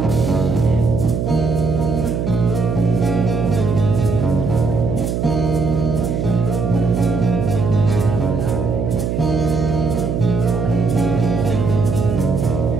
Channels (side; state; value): right; noise; hum, 1 dB below the sound